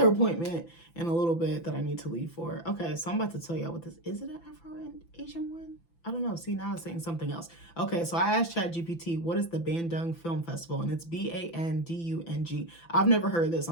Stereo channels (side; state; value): right; late; 5.9 ms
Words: appointment in a little bit that I need to leave for. Okay, so I'm about to tell y'all what this is. It an Afro-Asian one? I don't know. See, now it's saying something else. Okay, so I asked ChatGPT, what is the Bandung Film Festival? And it's Bandung. I've never heard of this.